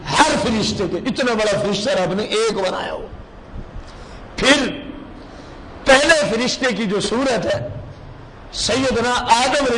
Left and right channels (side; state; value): both; identical; correlation 1.00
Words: ہر فرشتے کے۔ اتنا بڑا فرشتہ رب نے ایک بنایا ہو۔ پھر پہلے فرشتے کی جو صورت ہے سیدنا آدم علیہ